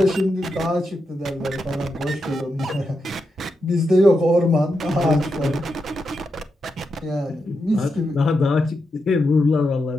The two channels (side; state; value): both; normal; correlation 0.86